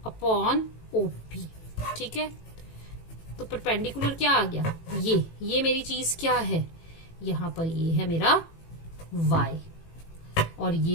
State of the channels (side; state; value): right; late; 18 ms